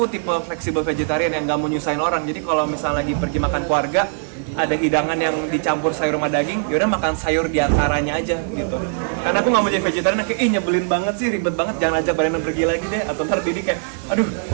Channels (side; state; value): left; silent; digital silence